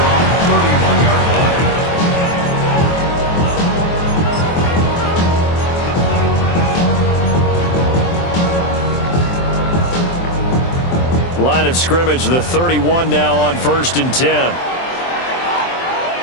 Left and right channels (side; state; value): right; late; 23 ms